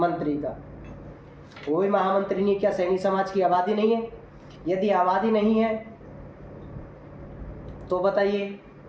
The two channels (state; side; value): identical; both; correlation 1.00